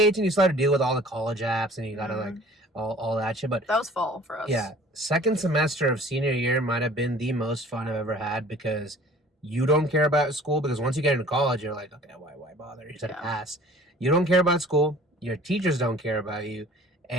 you still had to deal with all the college apps and you gotta like all that shit. But that was fall for us. Yeah. Second semester of senior year might have been the most fun I've ever had because you don't care about school because once you get into college you're like, okay, why bother? You just have to pass. You don't care about school. Your teachers don't care about you.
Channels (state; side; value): normal; both; correlation 0.49